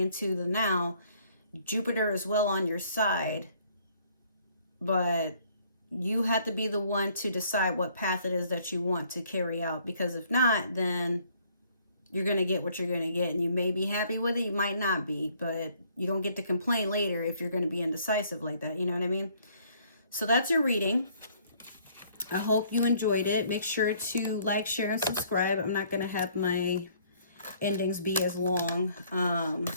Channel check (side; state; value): both; inverted; correlation -0.62